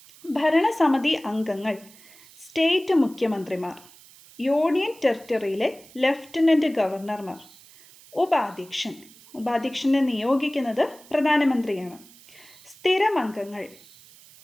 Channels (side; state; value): right; noise; hiss, 23 dB below the sound